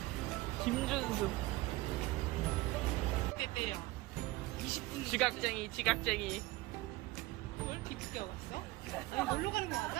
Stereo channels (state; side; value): quieter; left; 19.8 dB